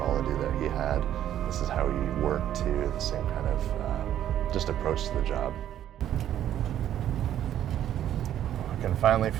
that he had. This is how he worked too. The same kind of just approach to the job. I can finally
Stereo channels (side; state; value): left; quieter; 11.1 dB